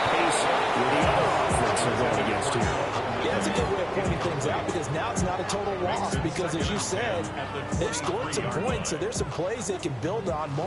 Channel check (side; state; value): both; identical; correlation 1.00